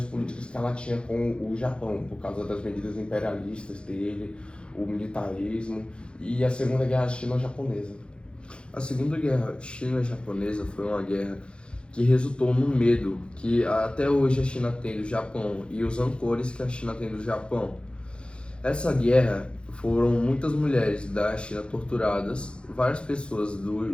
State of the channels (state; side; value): late; right; 0.056 ms